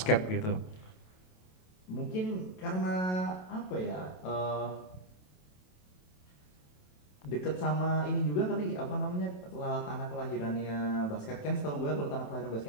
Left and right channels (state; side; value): late; right; 27 ms